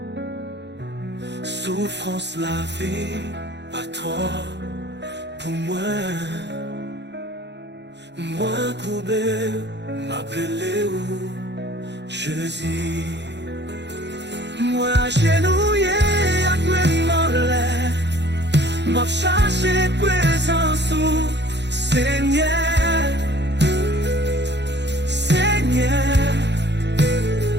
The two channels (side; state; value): left; late; 0.51 ms